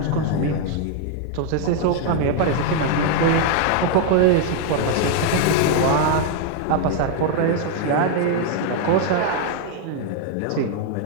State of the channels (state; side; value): different; both; correlation 0.00